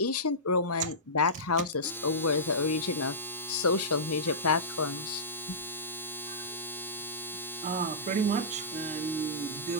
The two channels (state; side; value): normal; both; correlation -0.18